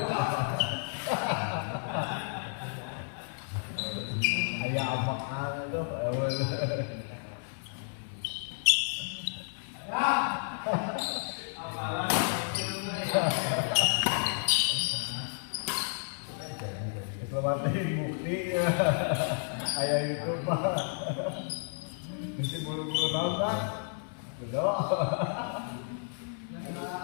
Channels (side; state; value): right; silent; digital silence